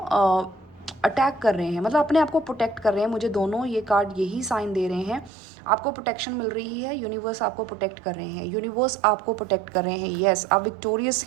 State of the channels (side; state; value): left; drops out; at 5.3 s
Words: अटैक कर रहे हैं, मतलब अपने आप को प्रोटेक्ट कर रहे हैं। मुझे दोनों ये कार्ड यही साइन दे रहे हैं। आपको प्रोटेक्शन मिल रही है, यूनिवर्स आपको प्रोटेक्ट कर रहे हैं, यूनिवर्स आपको प्रोटेक्ट कर रहे हैं। यस, आप विक्टोरियस